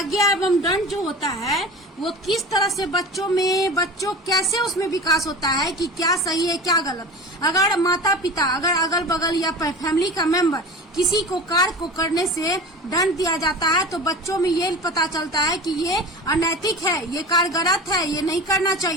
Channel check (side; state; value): both; normal; correlation 0.34